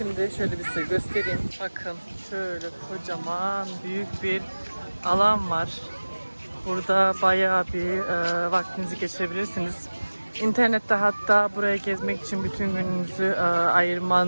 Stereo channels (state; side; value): inverted; both; correlation -1.00